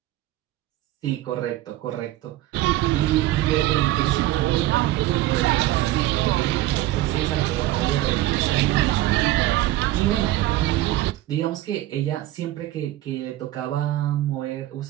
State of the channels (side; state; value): left; quieter; 15.6 dB